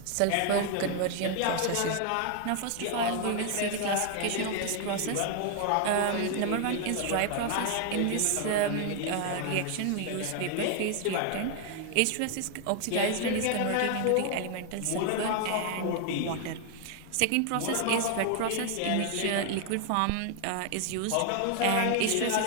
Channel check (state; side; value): different; both; correlation 0.00